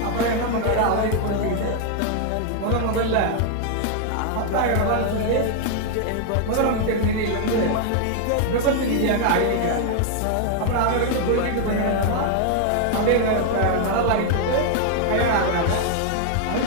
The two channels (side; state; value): both; different; correlation 0.00